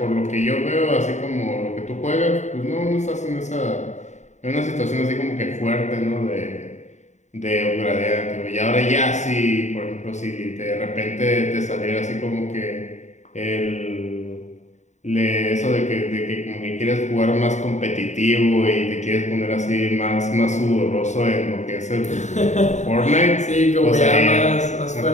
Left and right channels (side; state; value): right; late; 0.34 ms